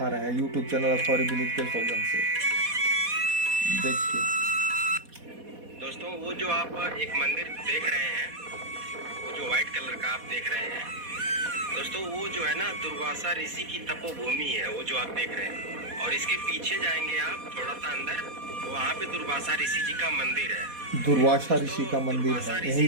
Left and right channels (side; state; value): left; late; 4.2 ms